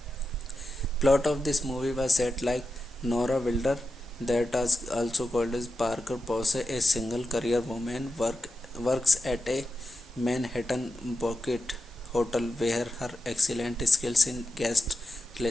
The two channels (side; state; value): both; normal; correlation 0.90